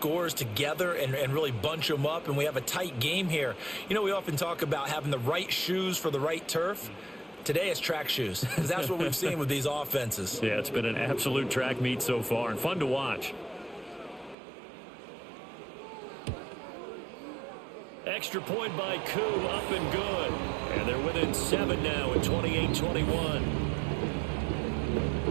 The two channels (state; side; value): drops out; left; at 14.4 s